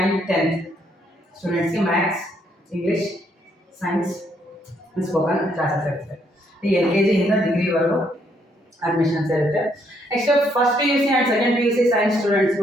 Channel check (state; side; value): normal; both; correlation 0.71